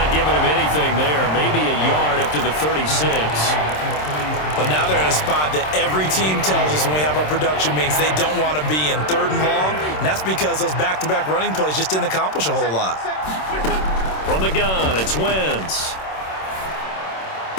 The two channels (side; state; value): right; late; 26 ms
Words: giving him anything there. Maybe a yard up to the 36. But now they're in a spot that every team tells us when we have our production meetings they don't want to be in, 3rd and long. And that's because those back-to-back running plays just didn't accomplish a whole lot. From the gun, it's Wentz.